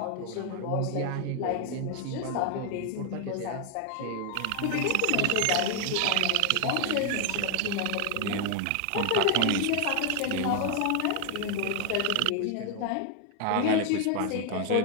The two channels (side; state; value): both; different; correlation 0.00